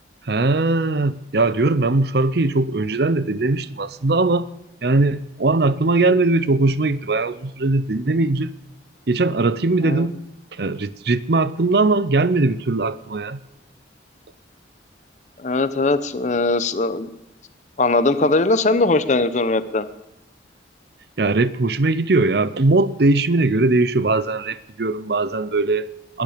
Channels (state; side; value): normal; both; correlation 0.35